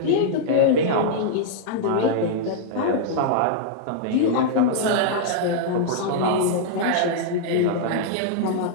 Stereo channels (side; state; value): both; different; correlation -0.01